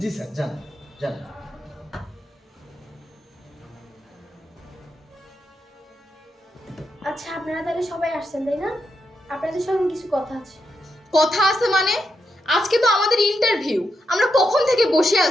জি স্যার, যান যান। আচ্ছা, আপনারা তাহলে সবাই আসছেন তাই না? আপনাদের সঙ্গে কিছু কথা আছে। কথা আছে মানে? আজকে তো আমাদের ইন্টারভিউ, আমরা কখন থেকে বসে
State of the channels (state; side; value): normal; both; correlation 0.84